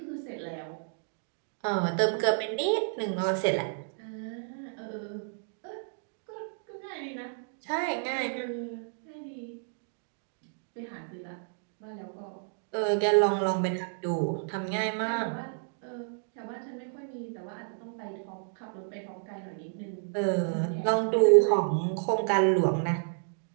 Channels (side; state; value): left; silent; digital silence